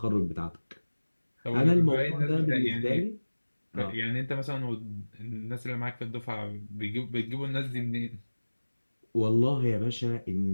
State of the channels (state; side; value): inverted; both; correlation -1.00